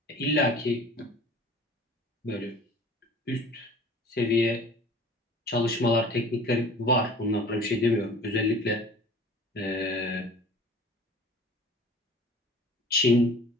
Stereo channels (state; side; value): normal; both; correlation 0.45